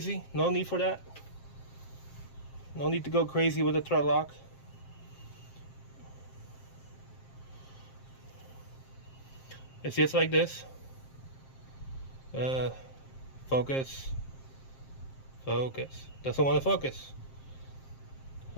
No need for that. No need to go crazy with the thread lock. It's just like this. Focus. Focus. Doesn't want to focus.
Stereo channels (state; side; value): late; right; 7.5 ms